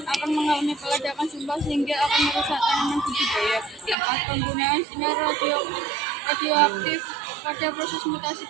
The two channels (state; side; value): drops out; left; at 4.0 s